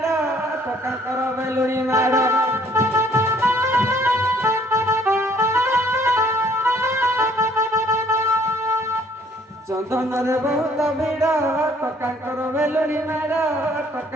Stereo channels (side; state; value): both; normal; correlation 0.61